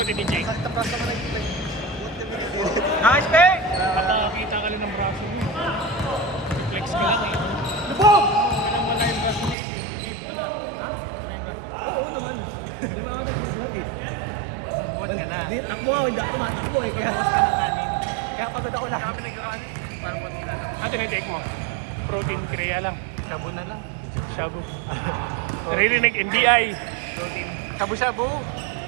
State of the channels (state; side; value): drops out; left; at 9.6 s